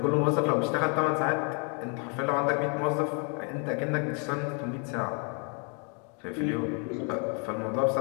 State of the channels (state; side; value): quieter; right; 38.1 dB